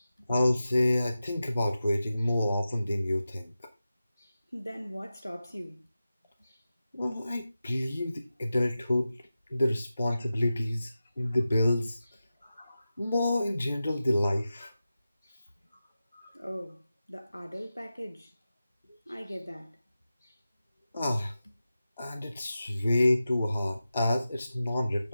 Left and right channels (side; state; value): both; inverted; correlation -0.93